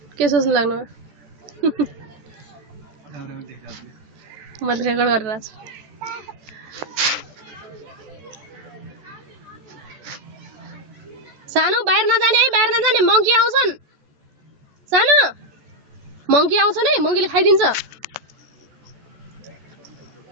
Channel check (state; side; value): late; left; 14 ms